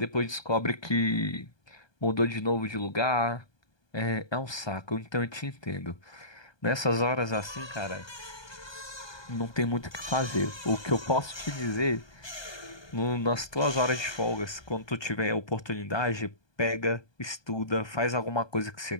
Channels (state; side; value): late; right; 1.2 ms